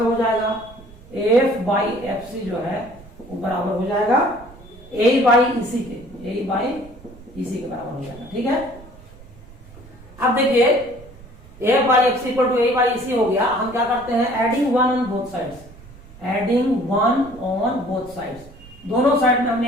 हो जाएगा एफ बाई एफ सी जो है वो बराबर हो जाएगा ए बाई इसी के, ए बाई इसी के बराबर हो जाएगा, ठीक है। अब देखिए A by X equal to A by EC हो गया। हम क्या करते हैं, एडिंग 1 ऑन बोथ साइड्स, दोनों साइड में हम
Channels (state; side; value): noise; right; rumble, 20 dB below the sound